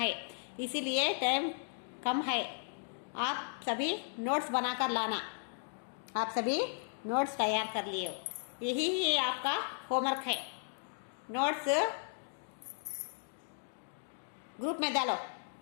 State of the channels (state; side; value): silent; right; digital silence